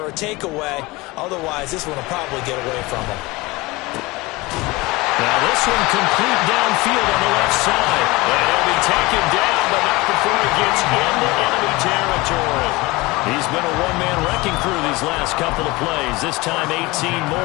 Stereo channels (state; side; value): quieter; right; 22.4 dB